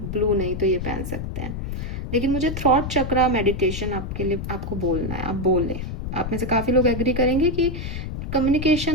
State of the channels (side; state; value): left; noise; rumble, 5 dB below the sound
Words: ब्लू नहीं तो ये पहन सकते हैं। लेकिन मुझे थ्रॉट चक्रा मेडिटेशन आपके लिए आपको बोलना है, आप बोले, आप में से काफ़ी लोग एग्री करेंगे कि